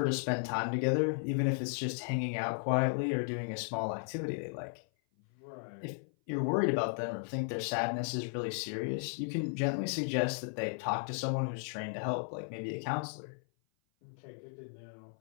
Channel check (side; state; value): right; silent; 54 dB below the other